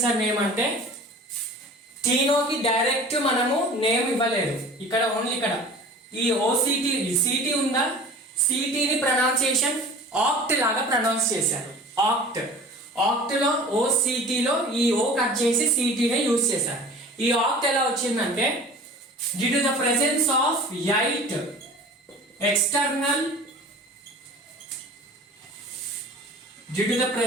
సార్ నేమ్ అంటే, టీనోకి డైరెక్ట్ మనము నేమ్ ఇవ్వలేదు, ఇక్కడ ఓన్లీ ఇక్కడ ఈ OCT CT ఉందా, CTని ప్రొనౌన్సియేషన్ ఆక్ట్ లాగా ప్రొనౌన్స్ చేశారు. ఆక్ట్ లో OCT లో ఈ O కట్ చేసి CTనే యూజ్ చేశారు. ఈ ఆక్ట్ ఎలా వచ్చిందంటే, due to the presence of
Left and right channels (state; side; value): normal; both; correlation 0.42